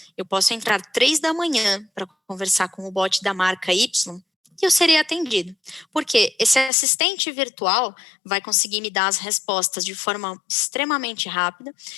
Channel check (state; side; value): drops out; right; at 6.7 s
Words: eu posso entrar 3 da manhã para conversar com o bot da marca Y e eu serei atendido. Porque esse assistente virtual vai conseguir me dar as respostas de forma extremamente rápida.